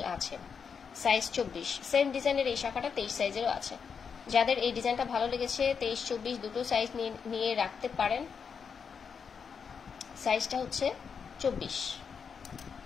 আছে। সাইজ 24, সেম ডিজাইনের এই শাখাটা 23 সাইজেরও আছে। যাদের এই ডিজাইনটা ভালো লেগেছে 23, 24 দুটো সাইজ নিয়ে রাখতে পারেন। সাইজটা হচ্ছে 24।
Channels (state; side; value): quieter; right; 6.3 dB